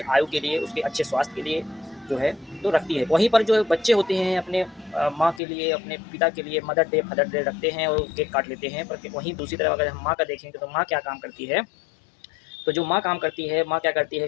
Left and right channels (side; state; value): right; drops out; at 5.4 s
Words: आयु के लिए, उसके अच्छे स्वास्थ्य के लिए जो है तो रखती है। वहीं पर जो बच्चे होते हैं अपने माँ के लिए, अपने पिता के लिए मदर डे, फादर डे रखते हैं और केक काट लेते हैं। पर वहीं दूसरी तरफ अगर हम माँ का देखेंगे तो माँ क्या काम करती है, तो जो माँ काम करती है, माँ क्या करती